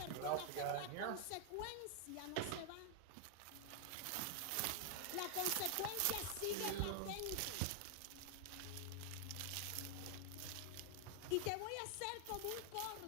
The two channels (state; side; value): different; both; correlation 0.00